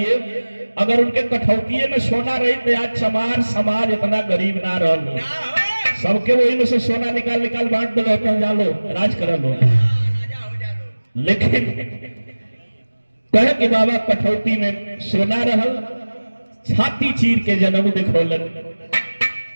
अगर उनके कठौती में सोना रही तो आज चमार समाज इतना गरीब ना रहो, सबके वही में से सोना निकाल निकाल बांट दो, जालो राज कर लो। लेकिन कहे कि बाबा कठौती में सोना रहल, छाती चीर के जन्म दिखोलन।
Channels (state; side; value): inverted; both; correlation -1.00